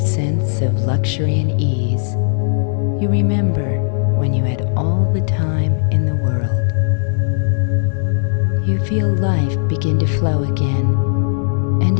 sense of luxury and ease, you remember when you had all the time in the world. You feel life begin to flow again, and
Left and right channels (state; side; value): silent; right; digital silence